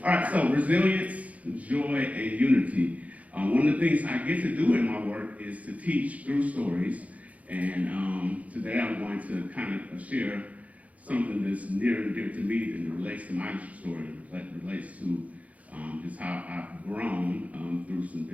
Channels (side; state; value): left; late; 0.069 ms